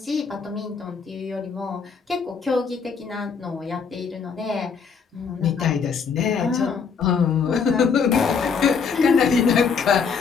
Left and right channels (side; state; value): right; quieter; 5.9 dB